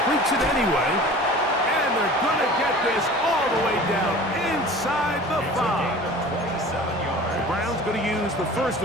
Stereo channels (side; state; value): both; normal; correlation 0.41